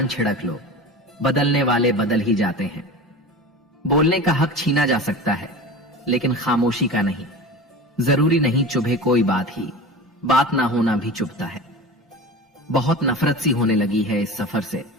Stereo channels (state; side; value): normal; both; correlation 0.32